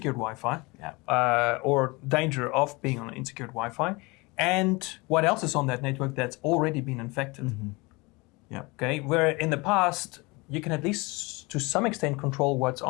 or danger of being on unsecured Wi-Fi. And what else is on that network that's already been infected? Okay, where in the past you can at least to some extent control what's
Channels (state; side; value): quieter; right; 25.4 dB